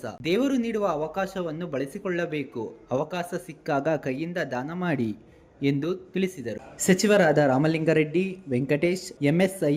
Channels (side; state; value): both; identical; correlation 1.00